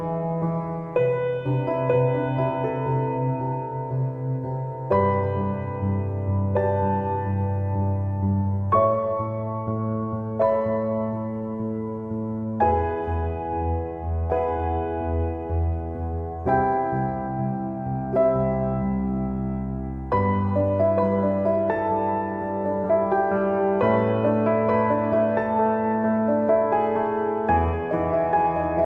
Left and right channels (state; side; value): identical; both; correlation 1.00